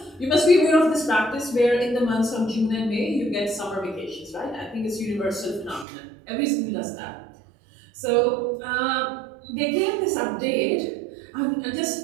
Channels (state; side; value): drops out; left; at 5.9 s